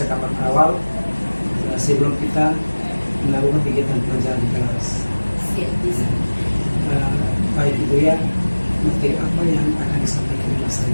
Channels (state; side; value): inverted; both; correlation -1.00